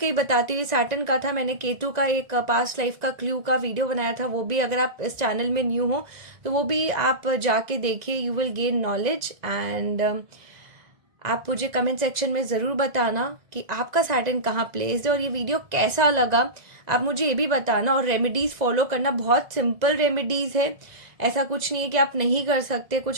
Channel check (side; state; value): left; late; 2.0 ms